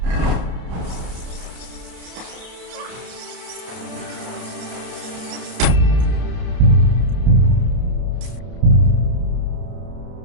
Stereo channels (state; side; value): late; left; 31 ms